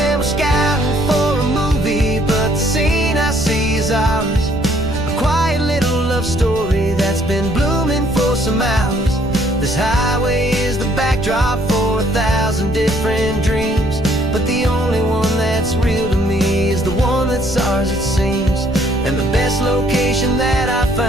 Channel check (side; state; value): right; noise; rumble, 11 dB below the sound